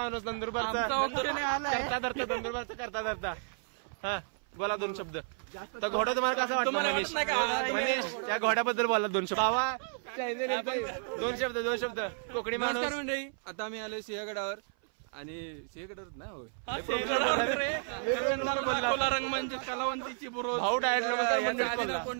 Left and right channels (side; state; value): left; silent; 56 dB below the other